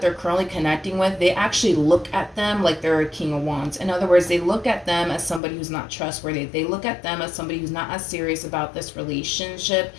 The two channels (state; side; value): drops out; right; at 5.4 s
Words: they're currently connecting with, they actually look at them like they're a King of Wands. In other words, they look at them as somebody who's not trustworthy. They look at them as somebody who's not as serious about this relationship